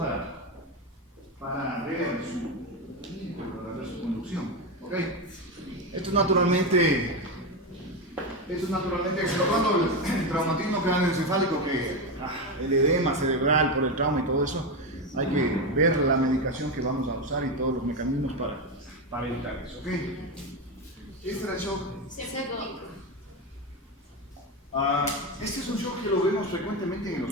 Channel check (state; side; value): normal; both; correlation 0.13